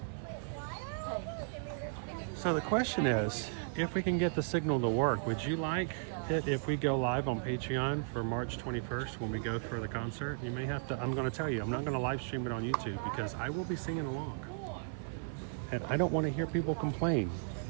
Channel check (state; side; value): silent; left; 54 dB below the other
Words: So the question is, if we can get the signal to work, would you like it if we go live on Patreon for March 21st when we go for the concert? You may have to, I'm going to tell you, I'm not going to live stream it on YouTube because I will be singing along. And I don't want to hear people complain